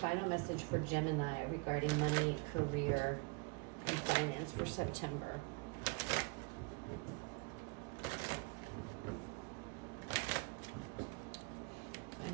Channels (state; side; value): quieter; left; 30.0 dB